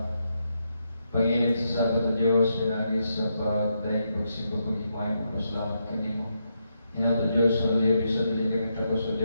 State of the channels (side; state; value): both; inverted; correlation -0.81